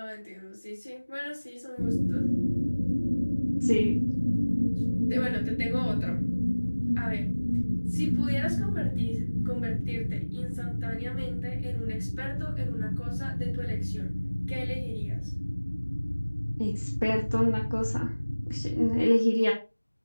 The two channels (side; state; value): both; inverted; correlation -1.00